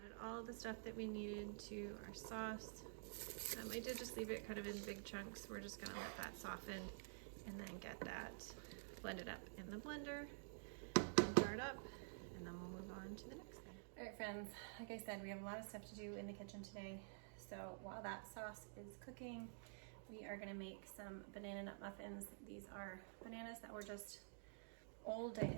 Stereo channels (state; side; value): silent; left; digital silence